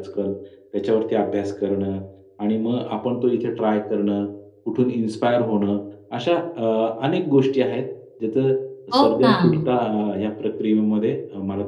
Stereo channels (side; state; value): both; identical; correlation 1.00